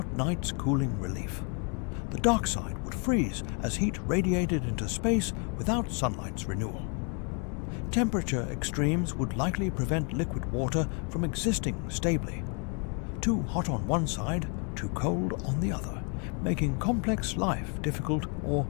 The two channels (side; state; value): right; quieter; 38.0 dB